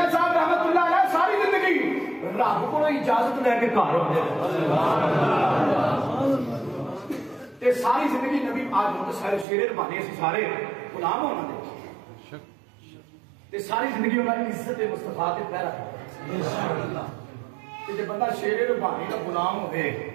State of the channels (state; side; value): drops out; left; at 9.5 s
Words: صاحب رحمت اللہ علیہ ساری زندگی رب کو اجازت لے کے گھر ہوتے ساری زندگی نبی آج شیر ربانی اسی سارے غلام ہونا دے ساری زندگی انہوں نے عزت مصطفیٰ کے پہرا جب بندہ شیر ربانی کا غلام ہوئے